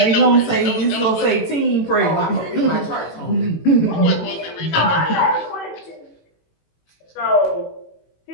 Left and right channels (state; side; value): late; right; 18 ms